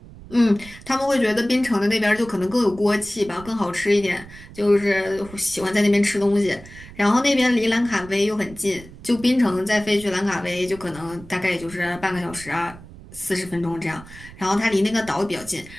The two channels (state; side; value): noise; right; rumble, 18 dB below the sound